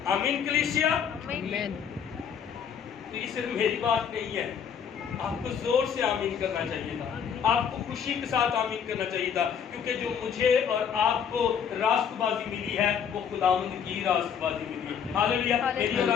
آمین کلیسیا۔ آمین۔ تو یہ صرف میری بات نہیں ہے، آپ کو زور سے آمین کرنا چاہیے تھا، آپ کو خوشی کے ساتھ آمین کرنا چاہیے تھا، کیونکہ جو مجھے اور آپ کو راست بازی ملی ہے وہ خداوند کی راست بازی ملی ہے۔ ہاللیلویا۔ میری اور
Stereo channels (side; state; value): right; quieter; 7.7 dB